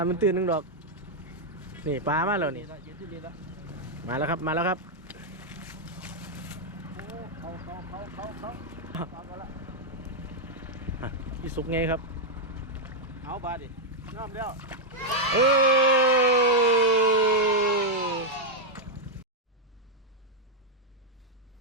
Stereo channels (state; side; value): normal; both; correlation -0.02